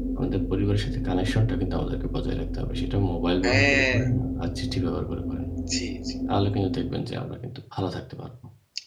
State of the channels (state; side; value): identical; both; correlation 1.00